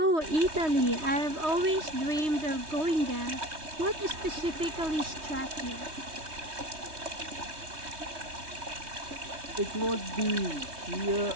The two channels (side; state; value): left; late; 3.2 ms